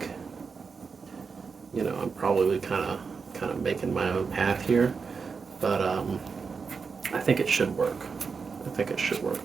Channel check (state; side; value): quieter; left; 5.3 dB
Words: I'm probably kind of making my own path here, but I think it should work. I think it should work